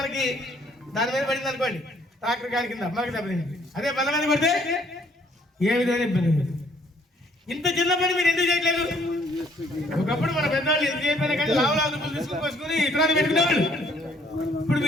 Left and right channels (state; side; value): normal; both; correlation 0.63